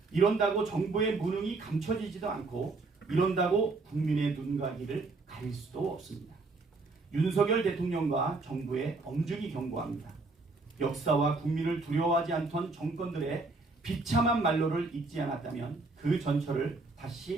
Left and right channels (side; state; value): left; quieter; 3.6 dB